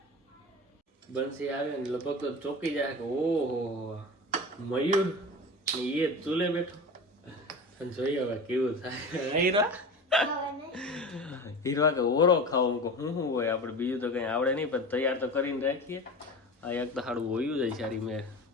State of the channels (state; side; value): normal; both; correlation 0.31